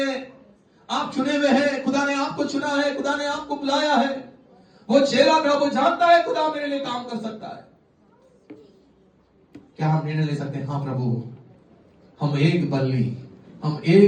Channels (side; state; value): both; identical; correlation 1.00